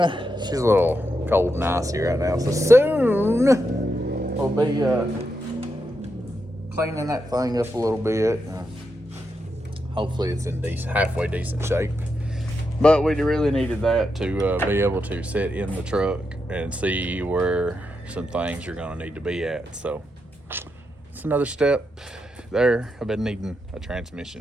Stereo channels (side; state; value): both; normal; correlation 0.85